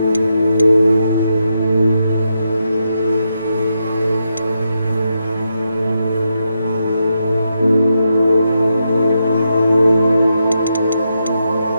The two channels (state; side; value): inverted; both; correlation -0.84